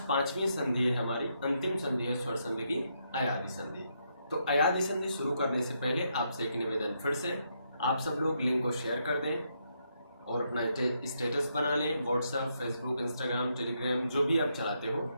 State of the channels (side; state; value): both; inverted; correlation -0.78